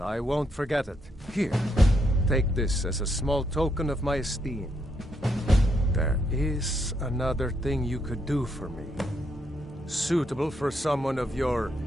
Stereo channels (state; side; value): normal; both; correlation 0.77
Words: I won't forget it. Here, take this as a small token of my esteem. There is another thing you could do for me. Suitable for someone of your